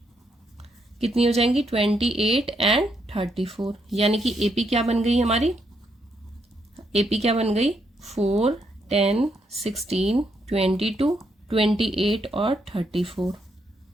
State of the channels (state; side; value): normal; both; correlation 0.77